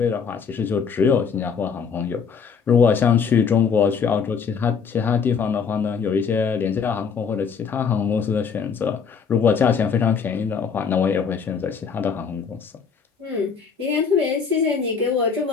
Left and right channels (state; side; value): quieter; right; 6.1 dB